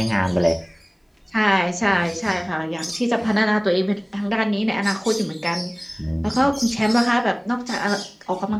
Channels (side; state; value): both; identical; correlation 1.00